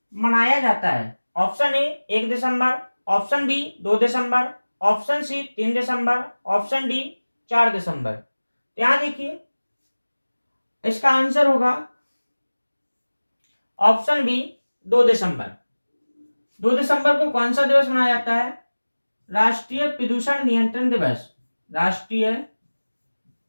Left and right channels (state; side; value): inverted; both; correlation -1.00